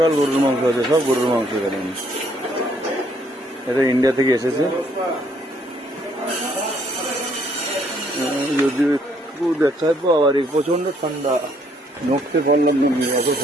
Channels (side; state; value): both; normal; correlation 0.67